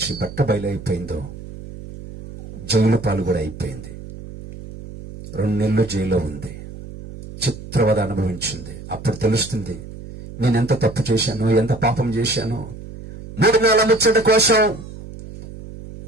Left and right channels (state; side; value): noise; right; hum, 13 dB below the sound